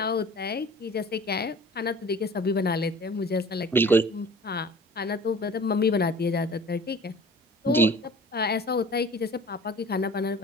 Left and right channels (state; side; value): normal; both; correlation 0.45